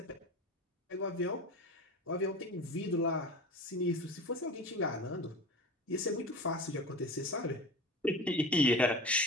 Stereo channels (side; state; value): both; normal; correlation 0.32